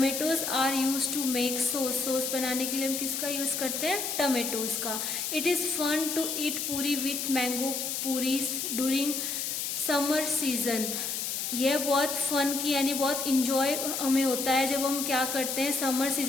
are use to make sauce, sauce बनाने के लिए हम किसका यूज करते हैं, टमेटोज का। It is fun to eat puri with mango puris during summer season, यह बहुत फन की यानी बहुत इंजॉय हमें होता है जब हम क्या करते हैं, समर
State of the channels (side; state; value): left; noise; hiss, 2 dB below the sound